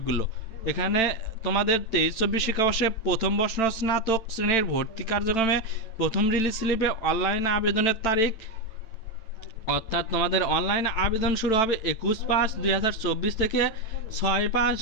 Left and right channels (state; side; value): late; right; 9.0 ms